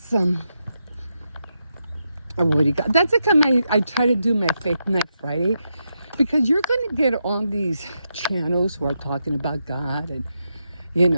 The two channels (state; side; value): inverted; both; correlation -0.85